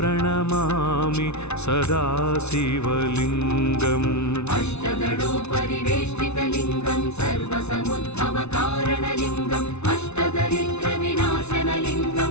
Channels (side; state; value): right; late; 0.81 ms